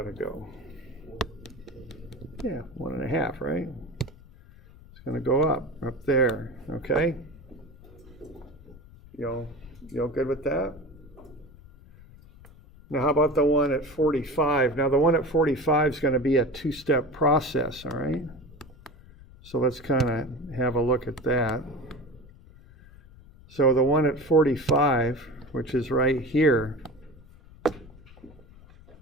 to go? Yeah, 1.5, right? It's going to go up there. Okay. Y'all good with that? Now, how about the one at 45? Now, the one at 45 is going to be a two-step process, all right? So let's kind of have a look at that. So the one at 45, which is right here,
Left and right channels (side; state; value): left; noise; rumble, 22 dB below the sound